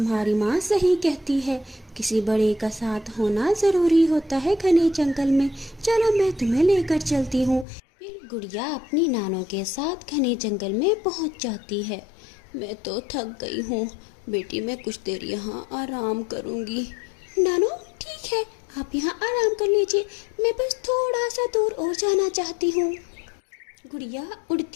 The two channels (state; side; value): drops out; right; at 7.7 s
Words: माँ सही कहती है, किसी बड़े का साथ होना जरूरी होता है घने जंगल में। चलो मैं तुम्हें लेकर चलती हूँ। फिर गुड़िया अपनी नानो के साथ घने जंगल में पहुँच जाती है। मैं तो थक गई हूँ बेटी, मैं कुछ देर यहाँ आराम करूँगी। नानो ठीक है, आप यहाँ आराम कर लीजिए, मैं बस थोड़ा सा दूर और जाना चाहती हूँ। गुड़िया